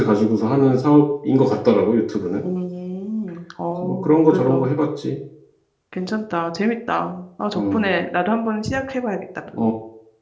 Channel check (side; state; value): both; identical; correlation 1.00